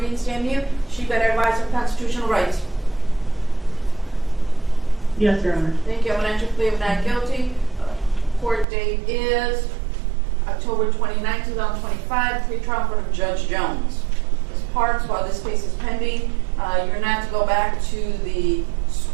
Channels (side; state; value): left; drops out; at 8.7 s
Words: stand mute. She better advise her constitutional rights. Yes, Your Honor. Thank you. I'm going to enter plea of not guilty. Court date is October 29, 2025. Pre-trial in front of Judge Jones. Ms. Parks, while this case is pending, you're not to go back to the